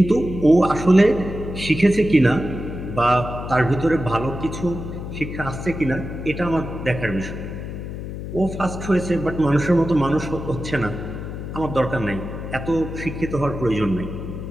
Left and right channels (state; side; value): noise; left; hum, 8 dB below the sound